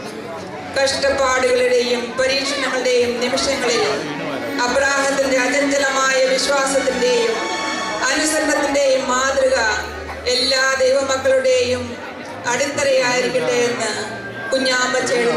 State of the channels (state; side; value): identical; both; correlation 1.00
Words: കഷ്ടപ്പാടുകളുടെയും പരീക്ഷണങ്ങളുടെയും നിമിഷങ്ങളിൽ അബ്രാഹത്തിന്റെ അചഞ്ചലമായ വിശ്വാസത്തിന്റെയും അനുസരണത്തിന്റെയും മാതൃക എല്ലാ ദൈവമക്കളുടെയും അടിത്തറയായിരിക്കട്ടെ എന്ന്